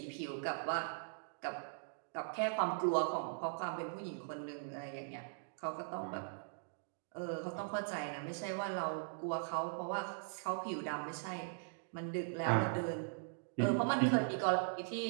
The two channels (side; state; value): left; silent; digital silence